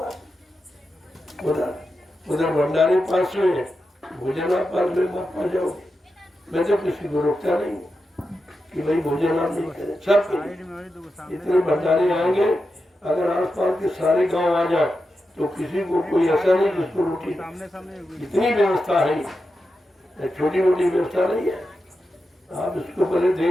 उधर भंडारे पास में भोजन आप पास में मत पा जाओगे। मैं तो किसी को रोकता नहीं कि भाई भोजन आप नहीं करें, सब इतने भंडारे आएंगे। अगर आसपास के सारे गांव आ जाए तो किसी को कोई ऐसा नहीं जिसको रोटी, इतनी व्यवस्था है, छोटी मोटी व्यवस्था नहीं है। आप इसको पहले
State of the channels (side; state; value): both; normal; correlation 0.89